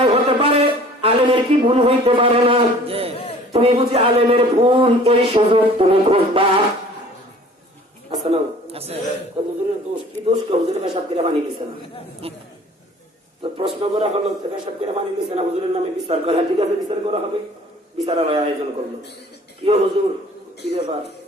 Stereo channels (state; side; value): normal; both; correlation 0.50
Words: হতে পারে, আলেমের কি ভুল হইতে পারে না? তুমি বুঝি আলেমের ভুল এই সুযোগ তুমি খুঁজবা? আছে না? হুজুরের দোষ কি দোষ? হুজুরের পেশাব করে পানি দিচ্ছে না। তো প্রশ্ন করা হলো, পেশাব করে পানি দিচ্ছে না, হুজুরের নামে বিচার করা। ঠিক আছে, বিচার করা হবে। বিচারালয় আয়োজন করলো। কি হুজুর, কি ব্যাপার?